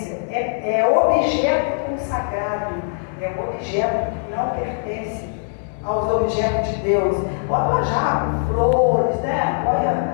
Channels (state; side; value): silent; right; digital silence